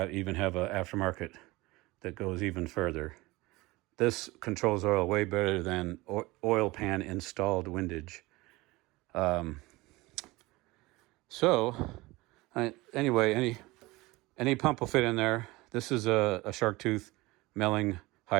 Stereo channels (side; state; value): left; quieter; 21.3 dB